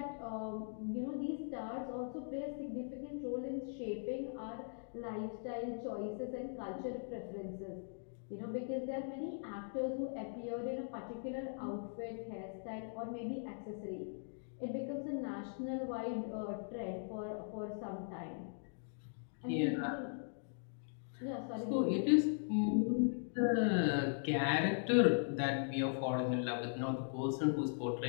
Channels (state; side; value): silent; right; digital silence